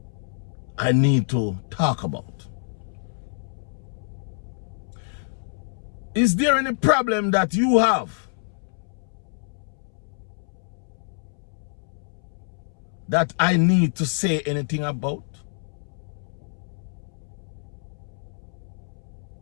I need to talk about? Is there any problem that you have that I need to say anything about?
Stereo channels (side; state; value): right; silent; 60 dB below the other